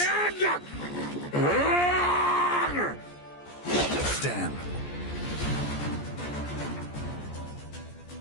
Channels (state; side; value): late; right; 14 ms